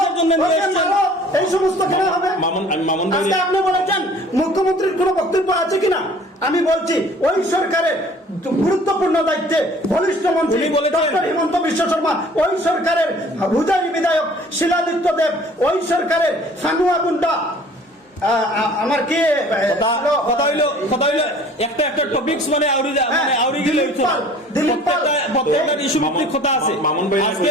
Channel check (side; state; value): both; normal; correlation 0.50